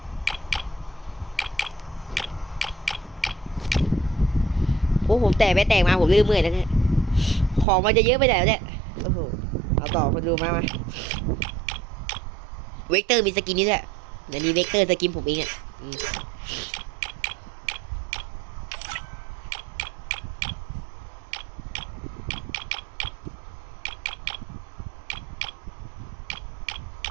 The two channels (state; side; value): drops out; left; at 7.7 s